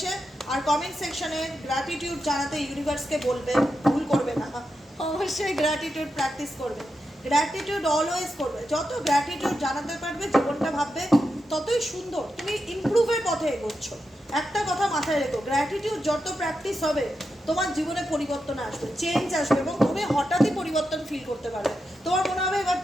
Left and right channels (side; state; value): both; normal; correlation 0.87